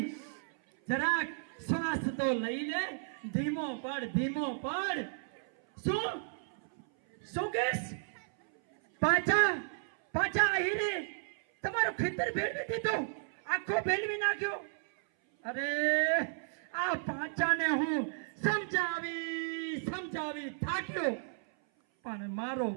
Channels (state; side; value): silent; left; 55 dB below the other